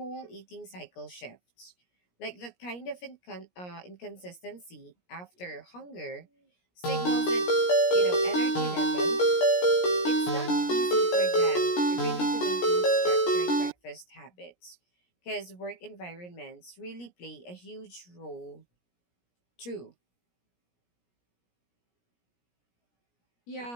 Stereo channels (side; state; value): right; late; 17 ms